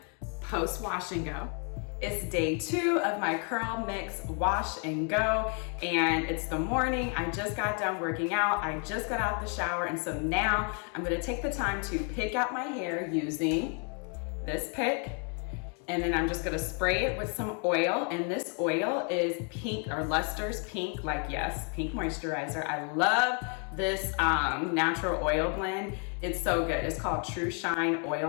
post wash and go. It's day 2 of my curl mix wash and go, and it's the morning. I just got done working out. I just got out the shower, and so now I'm gonna take the time to pick out my hair using this pick, and then I'm just gonna spray it with some oil, and this oil is pink, or Luster's pink, like yes, pink moisturizer. I love this natural oil blend. It's so good. It's called True Shine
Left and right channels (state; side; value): quieter; right; 39.6 dB